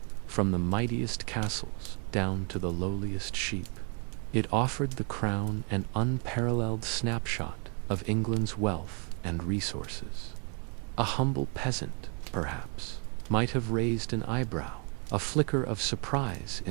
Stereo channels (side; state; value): left; quieter; 36.0 dB